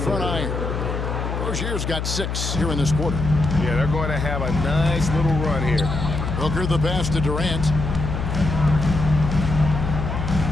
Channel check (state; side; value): noise; left; hum, 3 dB below the sound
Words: iron. Rozier's got 6 here in this quarter. Yeah, they're going to have a nice little run here. Booker the pass to Durant.